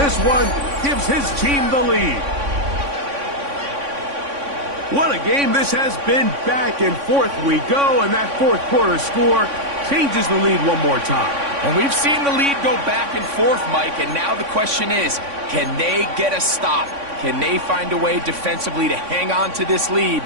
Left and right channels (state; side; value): late; left; 3.5 ms